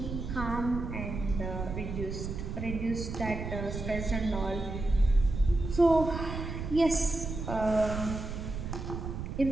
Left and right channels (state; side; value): noise; right; rumble, 6 dB below the sound